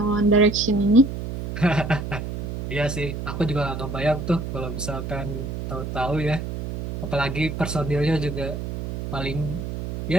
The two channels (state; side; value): noise; right; hum, 6 dB below the sound